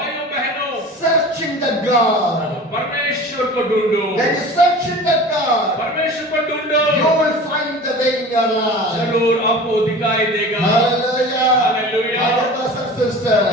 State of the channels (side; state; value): both; normal; correlation 0.38